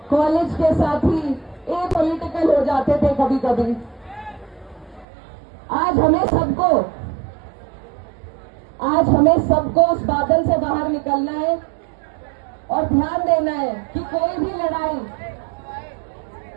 कॉलेज के साथी एपॉलिटिकल हो जाते थे कभी कभी। आज हमें सबको उस बादल से बाहर निकलना है और ध्यान देना है कि कोई भी लड़ाई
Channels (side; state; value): left; drops out; at 5.1 s